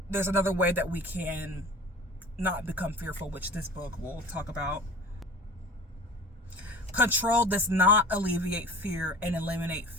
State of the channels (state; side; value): normal; both; correlation 0.40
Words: there's another way that we can not become fearful, which this book will talk about. Control does not alleviate fear and eliminate